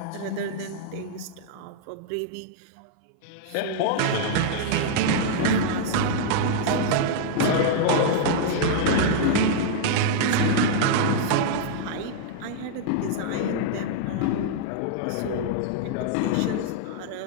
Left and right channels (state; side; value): different; both; correlation -0.01